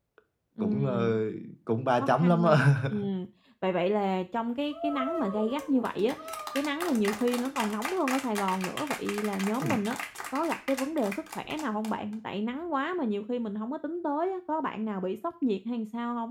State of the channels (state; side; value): identical; both; correlation 1.00